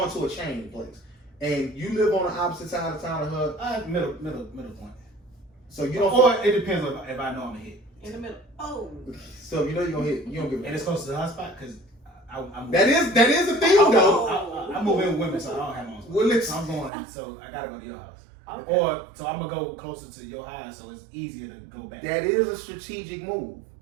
to a chain place, and you live on the opposite side of town of her. Middle point. So you don't. Or it depends if I know I'm gonna hit. In the middle. Oh. So you know you're gonna hit. You don't give. And it's close to the hot spot because that is the thing though. I move in with women, so I don't have my own spot. Well, so I'm going. So I gotta go to your house. Okay. Or so I'm gonna go closer to your house, so it's easier to go back. That is a strategic move.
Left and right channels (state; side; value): drops out; left; at 16.9 s